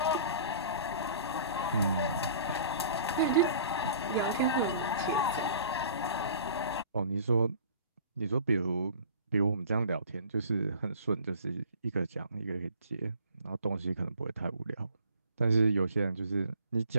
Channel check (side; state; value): both; inverted; correlation -0.48